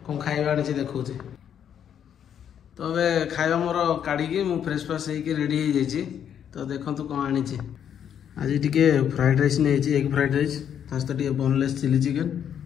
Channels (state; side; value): quieter; right; 8.9 dB